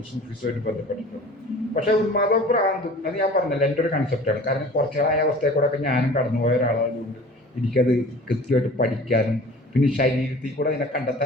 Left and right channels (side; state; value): both; normal; correlation 0.43